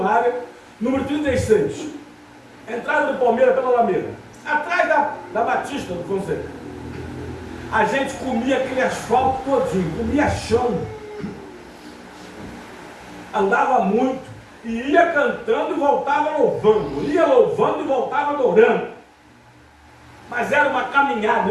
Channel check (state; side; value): identical; both; correlation 1.00